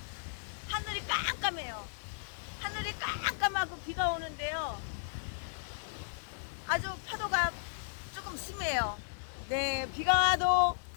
하늘이 깜깜해요. 하늘이 깜깜하고 비가 오는데요. 아주 파도가 조금 심해요. 네, 비가 와도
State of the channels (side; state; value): right; silent; digital silence